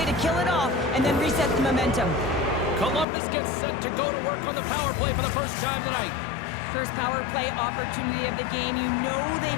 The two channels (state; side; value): drops out; right; at 3.1 s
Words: to kill it off, and then reset the momentum. Columbus gets set to go to work on the power play for the first time tonight. First power play opportunity of the game. You know